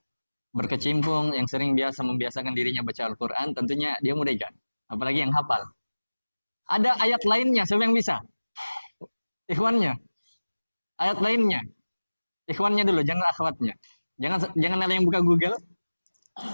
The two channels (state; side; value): inverted; both; correlation -1.00